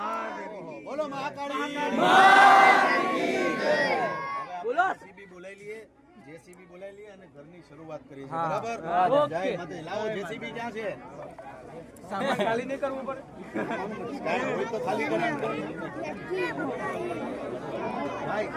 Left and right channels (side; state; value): both; identical; correlation 1.00